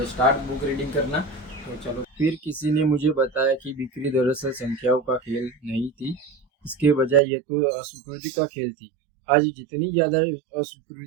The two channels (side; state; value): left; drops out; at 7.2 s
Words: स्टार्ट बुक रीडिंग करना। तो चलो, फिर किसी ने मुझे बताया कि बिक्री दरअसल संख्याओं का खेल नहीं थी, इसके बजाय ये तो अस्वीकृति का खेल थी। आज जितनी ज़्यादा